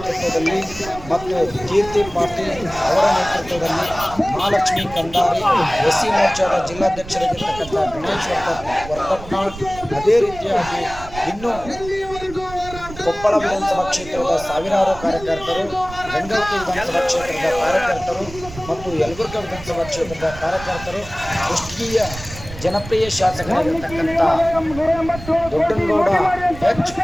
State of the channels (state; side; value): noise; right; rumble, 14 dB below the sound